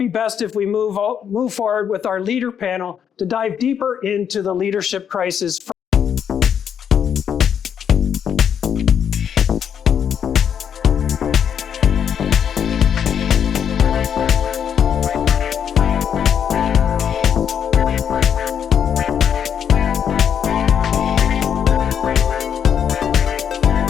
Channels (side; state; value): right; quieter; 8.3 dB